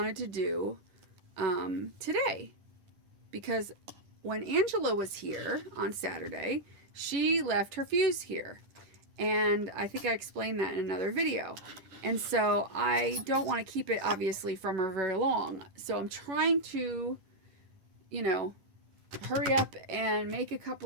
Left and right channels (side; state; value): left; late; 11 ms